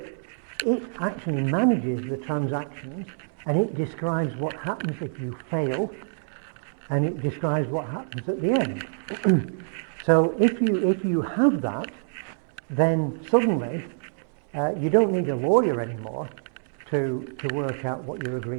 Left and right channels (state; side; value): silent; left; 61 dB below the other